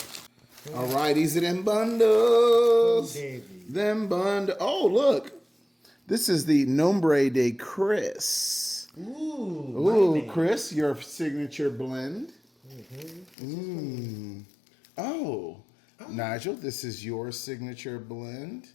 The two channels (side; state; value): right; drops out; at 13.4 s